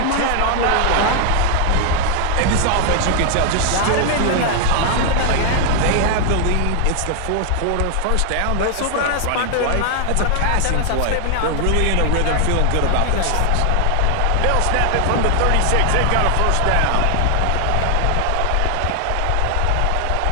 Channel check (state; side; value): different; both; correlation 0.00